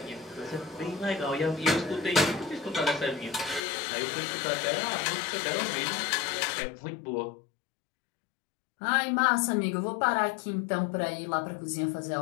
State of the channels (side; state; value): right; drops out; at 3.6 s